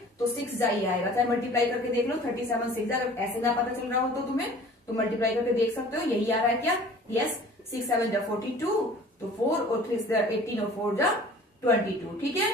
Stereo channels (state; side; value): normal; both; correlation 0.47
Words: तो 6 जा ही आएगा, चाहे मल्टीप्लाई करके देख लो, 37 6 जा, अगर ऐसे ना पता चल रहा हो तो तुम्हें, तो मल्टीप्लाई करके देख सकते हो, यही आ रहा है क्या, यस, 6 7 जा 42, तो 4 और 3 जा 18 और 4 जा 22, ठीक है,